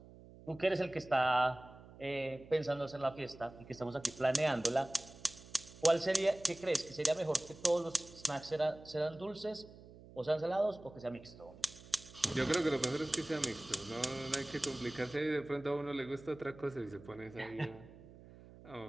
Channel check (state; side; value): noise; right; hum, 19 dB below the sound